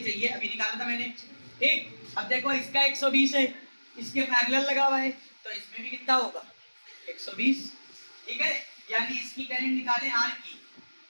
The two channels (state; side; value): inverted; both; correlation -1.00